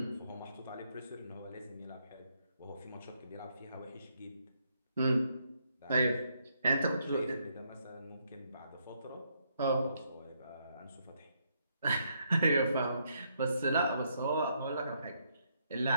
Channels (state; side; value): inverted; both; correlation -0.74